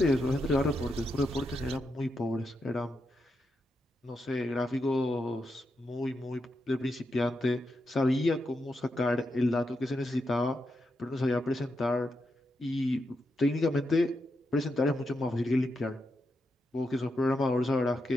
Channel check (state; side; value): normal; both; correlation 0.85